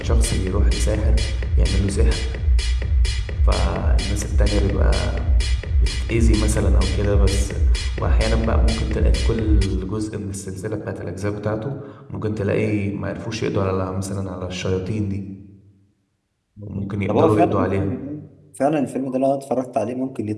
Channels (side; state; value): both; identical; correlation 1.00